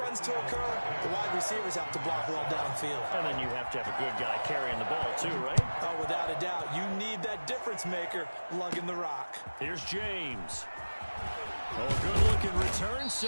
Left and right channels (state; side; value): inverted; both; correlation -1.00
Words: to occur, the wide receivers have to block well downfield. And then you have to have a good guy carrying the ball too, right? Oh, without a doubt, you need that difference maker lugging the rock. Here's James. Oh, good-looking return